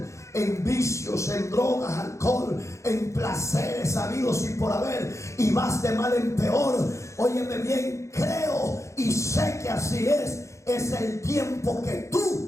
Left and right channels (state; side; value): late; right; 0.14 ms